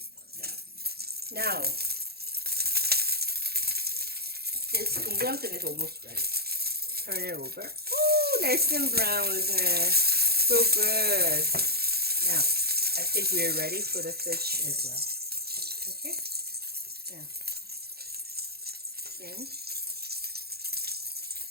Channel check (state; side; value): late; left; 0.46 ms